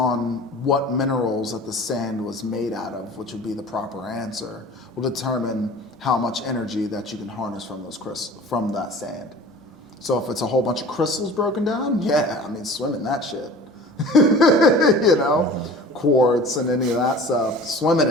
what minerals that the sand was made out of, which would be the proper answer, will determine how much energy that you can harness from those from that sand. So if it's a whole bunch of crystals broken down, yeah, I mean, swim in that shit. You know, quartz and any of that stuff, swim in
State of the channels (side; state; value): both; normal; correlation 0.42